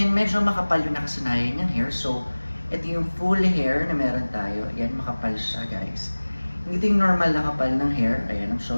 medyo makapal yung nakasanayan niyang hair. So, ito yung full hair na meron tayo. Ayan, makapal siya, guys. Hindi ito yung normal na kapal ng hair. Ayan, I'm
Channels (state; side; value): inverted; both; correlation -1.00